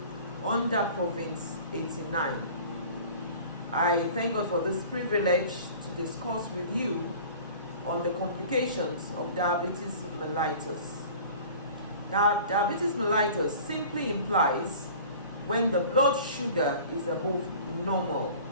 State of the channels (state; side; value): inverted; both; correlation -0.43